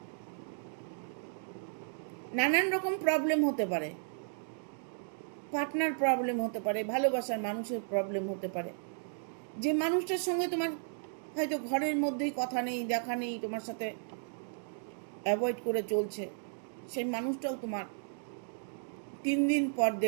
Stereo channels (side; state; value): left; silent; digital silence